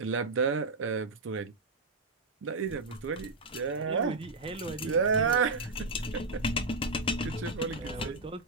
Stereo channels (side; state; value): left; quieter; 3.4 dB